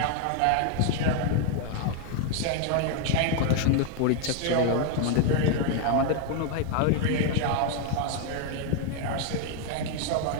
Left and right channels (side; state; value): both; different; correlation 0.01